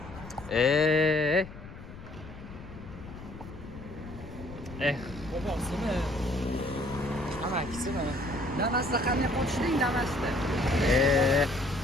Bobosimi? Amakisimi? Damasda qanday qochding Damasda?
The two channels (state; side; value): noise; left; rumble, 14 dB below the sound